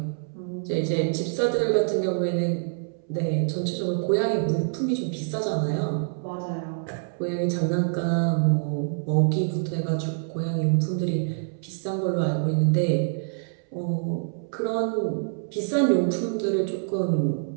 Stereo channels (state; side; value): silent; left; 61 dB below the other